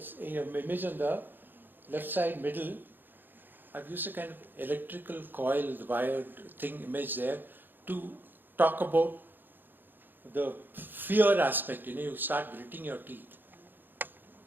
image on the left side middle. I've used a kind of electrical coil, the wired thing image there, to talk about the fear aspect. You start gritting your teeth.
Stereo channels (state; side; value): late; left; 0.093 ms